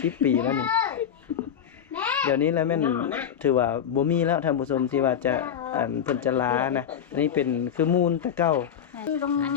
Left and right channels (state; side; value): quieter; right; 8.7 dB